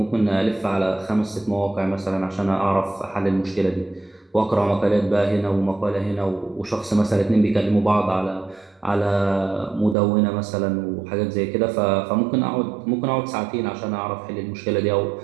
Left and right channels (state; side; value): drops out; left; at 10.0 s